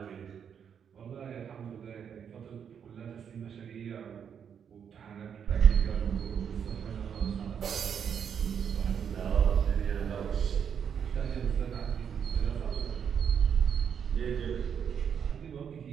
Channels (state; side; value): quieter; left; 7.7 dB